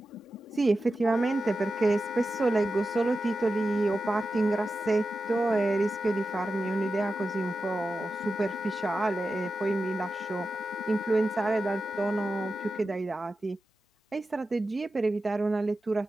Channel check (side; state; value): both; normal; correlation 0.92